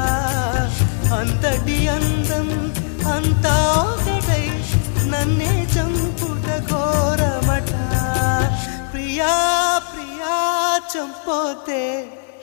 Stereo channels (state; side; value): silent; right; digital silence